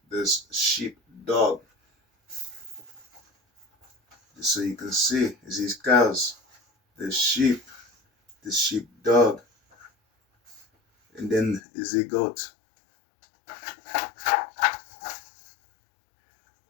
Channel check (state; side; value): drops out; right; at 11.6 s